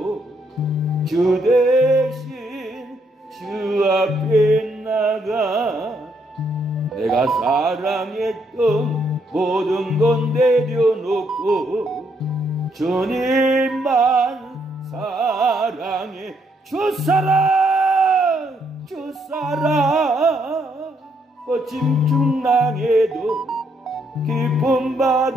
주 대신 주 앞에 나가 내가 사랑했던 모든 건 내려놓고 주님만 사랑해. 주 사랑 주 사랑 거친 중랑에도 깊은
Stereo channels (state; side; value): normal; both; correlation 0.74